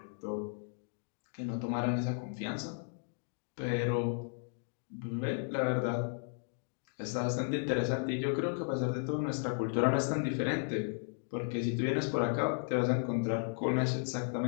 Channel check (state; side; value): silent; right; digital silence